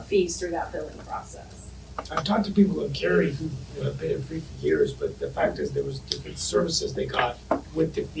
fees through that billing process. I've talked to people in Cary who have paid it free for years, but the fact is there was different services they got with the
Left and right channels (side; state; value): both; identical; correlation 1.00